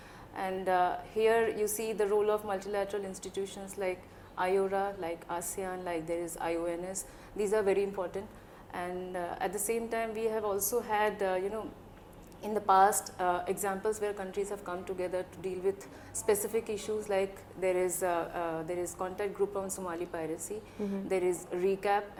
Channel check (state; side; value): identical; both; correlation 1.00